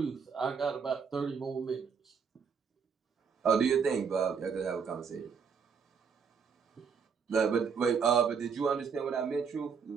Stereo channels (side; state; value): left; quieter; 6.2 dB